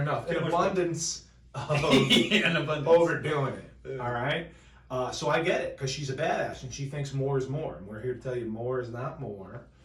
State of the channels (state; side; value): identical; both; correlation 1.00